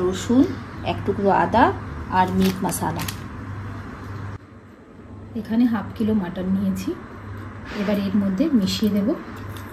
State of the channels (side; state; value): both; identical; correlation 1.00